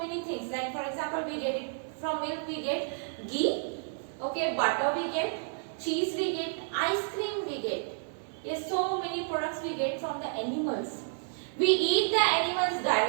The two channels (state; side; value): silent; left; digital silence